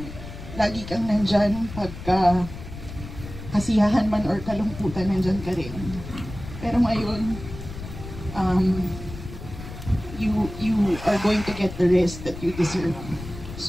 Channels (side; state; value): left; noise; rumble, 11 dB below the sound